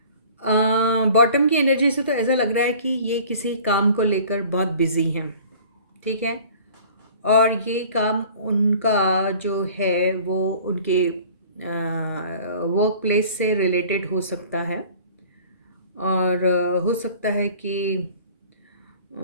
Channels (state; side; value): inverted; both; correlation -0.47